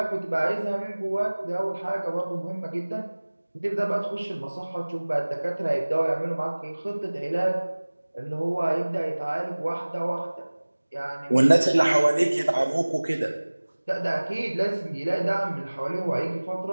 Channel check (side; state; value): both; inverted; correlation -1.00